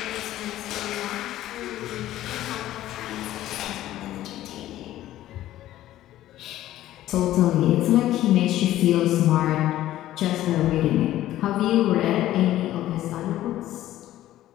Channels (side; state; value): right; quieter; 14.0 dB